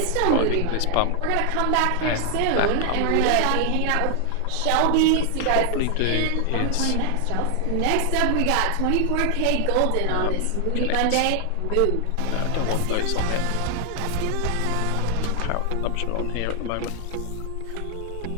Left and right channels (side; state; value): both; different; correlation 0.00